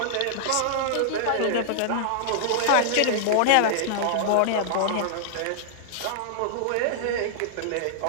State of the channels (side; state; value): both; different; correlation -0.01